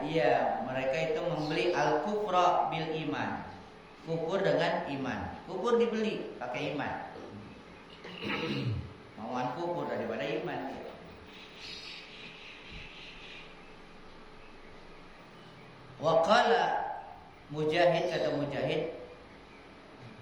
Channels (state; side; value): identical; both; correlation 1.00